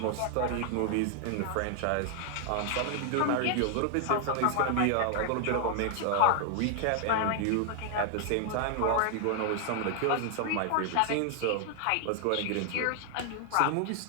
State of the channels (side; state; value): both; different; correlation 0.00